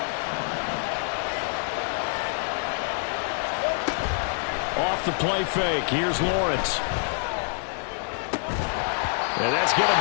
Off the play fake, here's Lawrence. And that's going to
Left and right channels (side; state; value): right; silent; 61 dB below the other